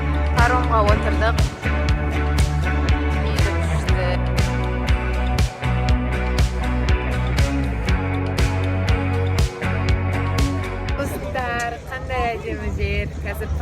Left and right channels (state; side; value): identical; both; correlation 1.00